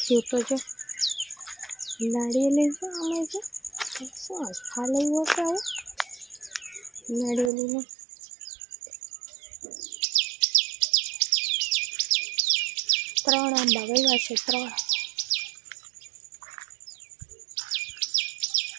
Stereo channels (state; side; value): drops out; left; at 7.5 s